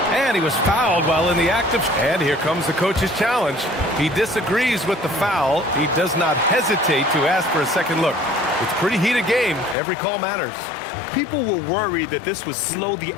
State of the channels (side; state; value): right; drops out; at 9.8 s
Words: And he was fouled while in the act of... And here comes the coach's challenge. He disagrees with the foul. He does not hesitate to ask for a second look. It's a pretty heated game. Every call matters. People were worried that this would slow the